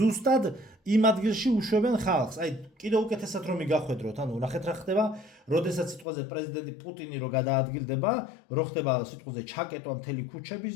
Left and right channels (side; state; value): right; drops out; at 6.1 s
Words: იმ ადგილში უშვებენ ხალხს. აი კიდევ უკეთესად რომ მიგახვედროთ, ანუ ნახეთ რა ხდება, როდესაც სიტყვაზე პრეზიდენტი პუტინი რო გადაადგილდება, რო ხდება სიტყვაზე ჩაკეტვა მთელი ქუჩების